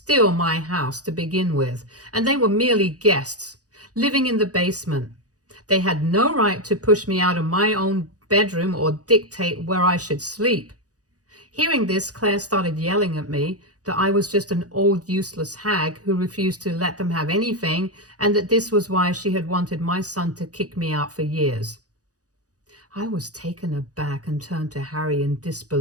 my house to begin with, and they were merely guests, living in the basement. They had no right to push me out of my own bedroom or dictate where I should sleep. Hearing this, Claire started yelling at me that I was just an old useless hag who refused to let them have anything, and that this was why she had wanted my son to kick me out for years. I was taken aback and turned to Harry in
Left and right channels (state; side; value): late; left; 0.67 ms